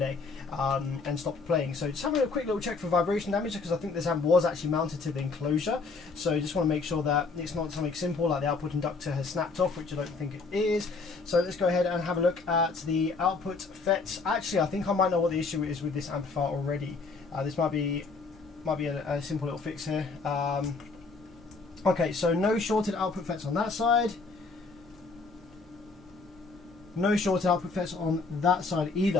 and stopped playing. So just having a quick little check for vibration damage because I think this amp was actually mounted to the enclosure. So just want to make sure that it's not something simple like the output inductor has snapped off, which I don't think it is. So let's go ahead and have a look at the output FETs. Actually, I think I might know what the issue is with this amplifier already. This might be a simple little fix here. Okay, so no shorted output FETs on that side. No shorted output FETs on that side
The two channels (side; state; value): right; quieter; 4.2 dB